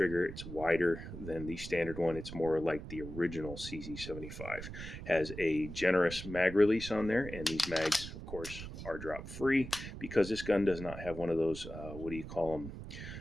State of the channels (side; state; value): right; noise; rumble, 10 dB below the sound